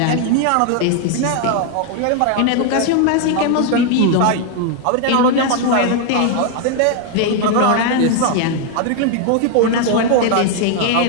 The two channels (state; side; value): different; both; correlation 0.00